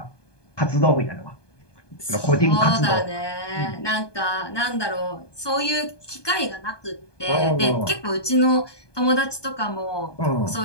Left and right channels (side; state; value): right; late; 1.2 ms